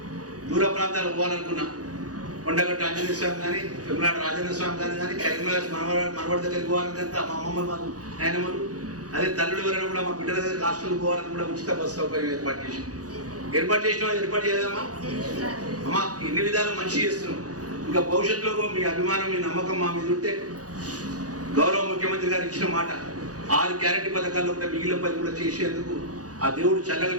దూర ప్రాంతాలు పోవాలనుకున్నా, కొండగట్టు ఆంజనేయ స్వామి కానీ, తిరుమలాడ రాజేంద్ర స్వామి కానీ, కరీంనగర్ మనవాడి దగ్గరికి పోవాలంటే మా అమ్మమ్మలు, మా నాయనమ్మలు, అదే తల్లుడు ఎవరైనా కూడా మా బిడ్డల దగ్గర హాస్టల్కి పోవాలని కూడా ఉచిత బస్సు సౌకర్యం ఏర్పాటు చేసినాం. ఏర్పాటు చేయదమ్మా అమ్మా. ఇన్ని విధాలు మంచి చేస్తున్నాం. ఇంకా భవిష్యత్తులో మీ అభిమానం, మీ నమ్మకం మా మీద ఉంటే గౌరవ ముఖ్యమంత్రి గారు ఇచ్చిన మాట 6 గ్యారెంటీ పథకాల్లో కూడా మిగిలిన పని కూడా చేసేందుకు ఆ దేవుడు చల్లగా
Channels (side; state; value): left; late; 0.67 ms